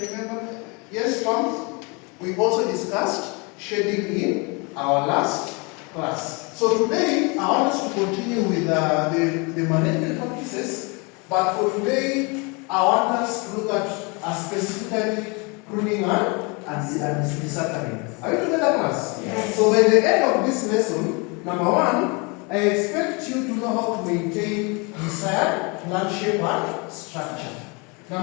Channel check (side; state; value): right; quieter; 30.1 dB